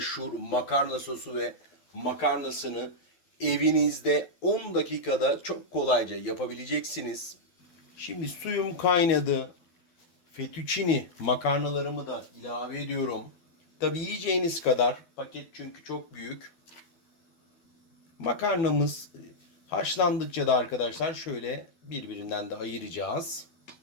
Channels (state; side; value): late; right; 12 ms